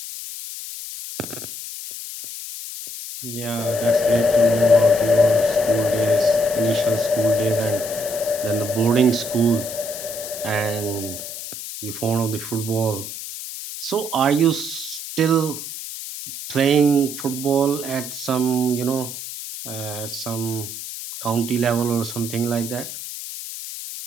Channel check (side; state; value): left; noise; hiss, 9 dB below the sound